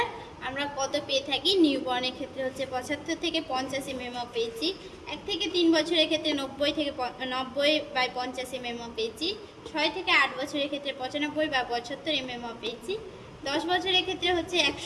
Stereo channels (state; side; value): identical; both; correlation 1.00